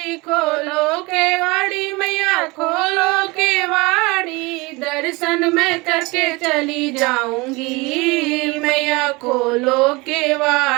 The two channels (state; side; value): quieter; left; 24.8 dB